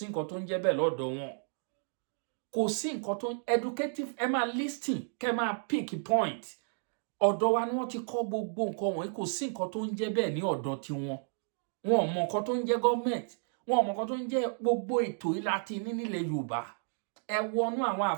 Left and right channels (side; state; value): left; silent; digital silence